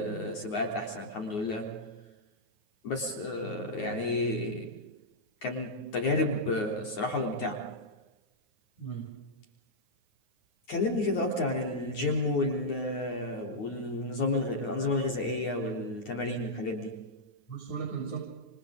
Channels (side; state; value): right; late; 9.6 ms